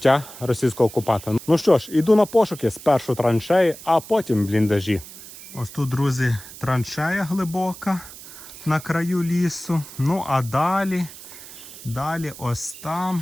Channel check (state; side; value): noise; right; hiss, 16 dB below the sound